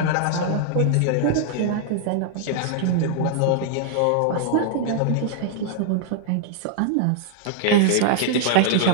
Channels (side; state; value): both; different; correlation -0.01